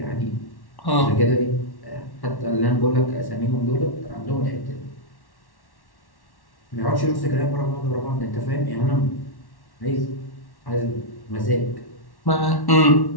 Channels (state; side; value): late; right; 1.1 ms